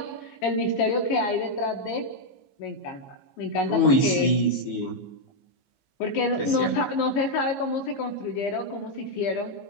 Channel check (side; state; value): right; late; 15 ms